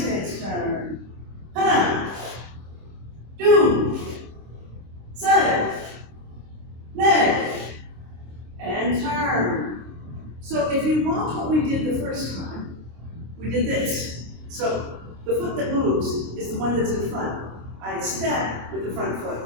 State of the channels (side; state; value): left; late; 26 ms